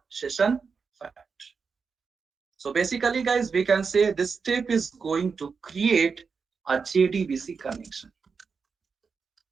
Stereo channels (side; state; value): left; quieter; 5.4 dB